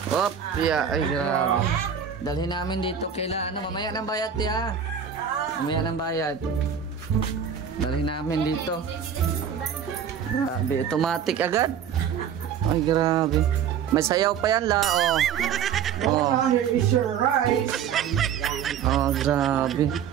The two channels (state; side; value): quieter; left; 7.9 dB